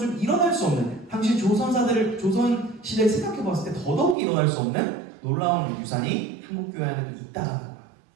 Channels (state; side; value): drops out; left; at 4.2 s